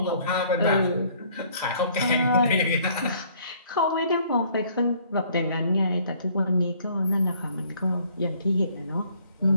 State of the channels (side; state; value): both; inverted; correlation -0.60